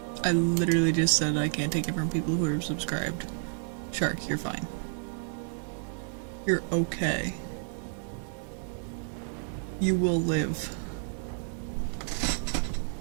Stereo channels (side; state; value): left; silent; digital silence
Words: I literally just said I can't take it from people who are subscribed. Shark, you're fine. You're okay. You will live.